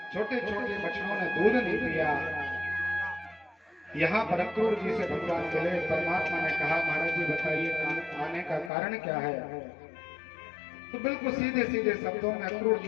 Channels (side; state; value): right; drops out; at 8.7 s